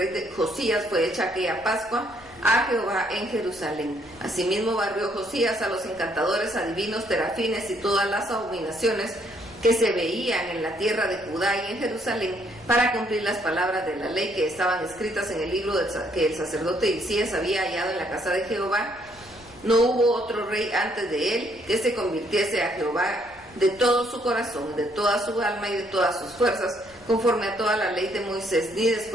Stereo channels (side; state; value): left; noise; rumble, 26 dB below the sound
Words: de Josías fue hecha aquella Pascua a Jehová en Jerusalén. Asimismo barrió Josías a los encantadores, adivinos, terafines y todas las abominaciones que se veían en la tierra de Judá y en Jerusalén, para cumplir las palabras de la ley que estaban escritas en el libro que el sacerdote Hilcías había hallado en la casa de Jehová. No hubo otro rey antes de él que se convirtiese a Jehová de todo su corazón, de toda su alma y de todas sus fuerzas, conforme a toda la ley de Moisés, ni